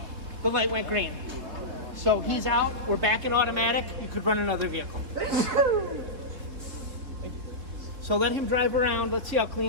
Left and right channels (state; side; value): late; left; 3.7 ms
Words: the light went green. So he's out. We're back in automatic. You could run another vehicle. So let him drive around. Let's see how